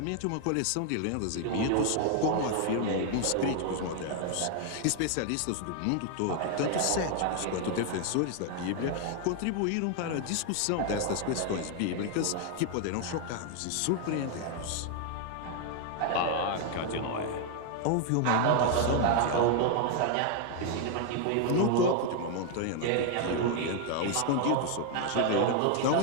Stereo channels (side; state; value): both; different; correlation 0.00